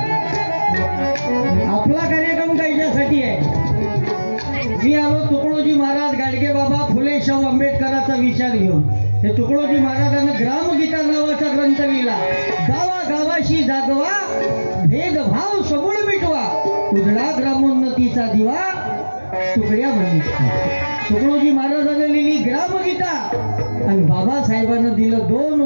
आपला कार्यक्रम कायच्यासाठी आहे? मी आलो तुकडोजी महाराज, गाडगे बाबा, फुले शाहू आंबेडकरांचा विचार घेऊन. हे तुकडोजी महाराजांनी ग्रामगीता नावाचा ग्रंथ लिहिला. गावागावाशी जागवा, भेदभाव सबूळ मिटवा, उजळा ग्रामोन्नतीचा दिवा तुकड्या म्हणून. तुकडोजी महाराजांनी लिहिली ग्रामगीता, आणि बाबासाहेबांना दिलं 2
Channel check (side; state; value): both; inverted; correlation -1.00